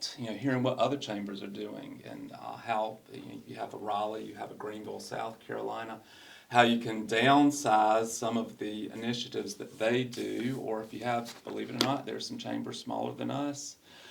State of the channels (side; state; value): both; identical; correlation 1.00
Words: hearing what other chambers are doing, and how you have a Raleigh, you have a Greenville, South Carolina, how you can downsize some of the initiatives that they do, or if you have, believe it or not, there's some chambers smaller than us,